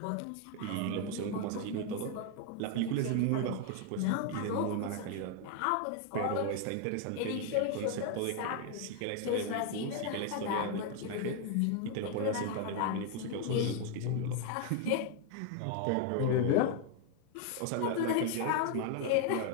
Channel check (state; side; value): different; both; correlation 0.00